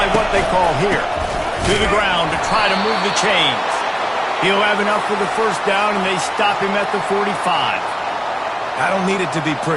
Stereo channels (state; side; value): identical; both; correlation 1.00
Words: what they call here. To the ground to try to move the chains. He'll have enough for the 1st down, and they stop him at the 45. I don't need it to be